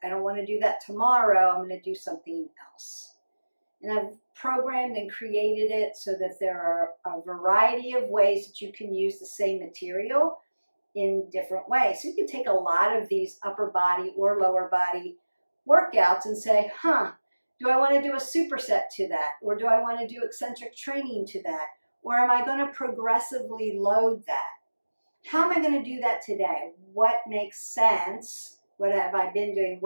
I don't want to do that tomorrow. I'm going to do something else. And I've programmed and created it so that there are a variety of ways that you can use the same material in different ways. So you can take a lot of these upper body or lower body workouts and say, do I want to do a superset to that? Or do I want to do eccentric training to that? Or am I going to progressively load that? How am I going to do that today? What makes sense? What have I been doing?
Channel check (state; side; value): inverted; both; correlation -1.00